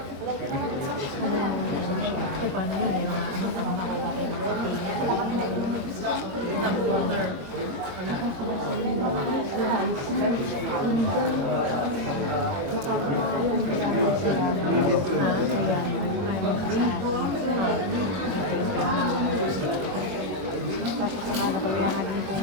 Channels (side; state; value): left; late; 22 ms